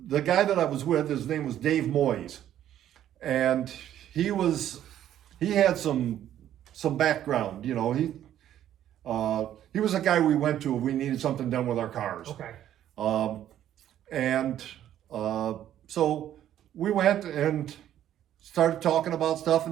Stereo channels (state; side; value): quieter; left; 11.4 dB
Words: guy that I was with, his name was Dave Moyes, and he had some background. He was a guy we went to if we needed something done with our cars. Okay. So we went and started talking about stuff